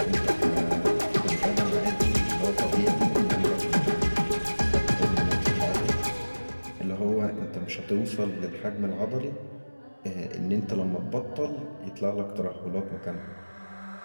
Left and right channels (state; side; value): inverted; both; correlation -1.00